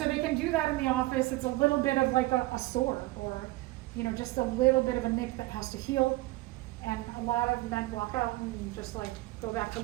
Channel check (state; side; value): quieter; left; 19.7 dB